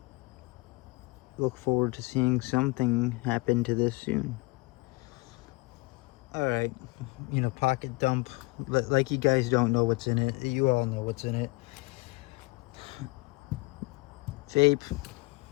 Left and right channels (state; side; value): quieter; right; 24.9 dB